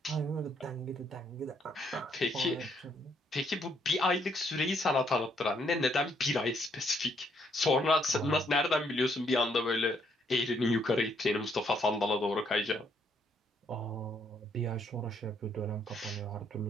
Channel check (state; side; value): normal; both; correlation 0.71